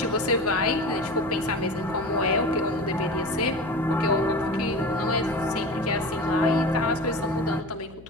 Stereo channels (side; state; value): left; noise; hum, 20 dB below the sound